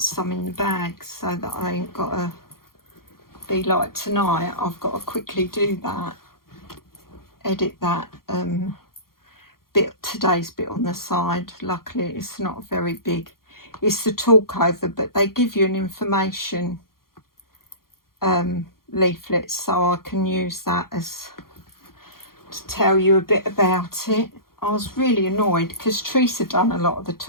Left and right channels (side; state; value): right; late; 0.92 ms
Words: some in the bag, so that I ain't got to be like tonight. I've got to quickly do that, edit that today's bit on the side. Luckily it's not very big. It's the talk over, but they give you an information leaflet, so I can use that as to tell you a bit about it. I was really annoyed because Teresa done a lot of the